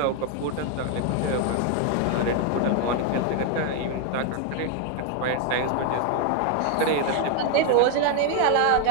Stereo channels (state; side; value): different; both; correlation 0.01